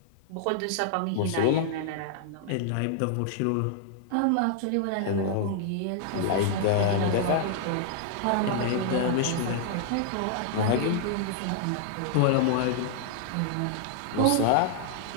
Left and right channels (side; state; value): both; different; correlation -0.01